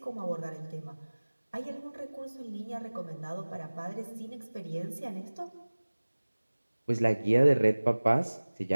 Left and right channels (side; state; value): both; inverted; correlation -1.00